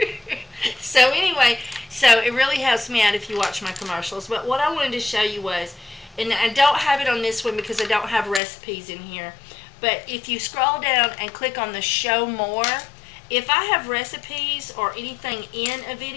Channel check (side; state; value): right; drops out; at 8.4 s